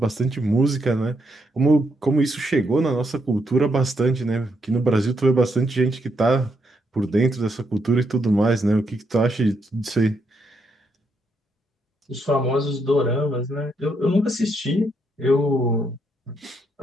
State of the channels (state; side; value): normal; both; correlation 0.78